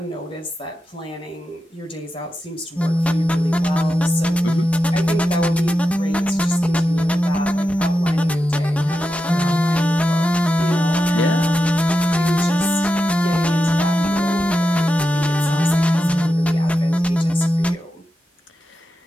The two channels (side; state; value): both; normal; correlation 0.89